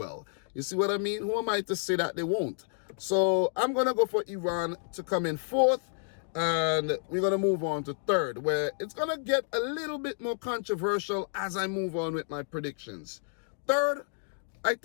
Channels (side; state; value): right; silent; digital silence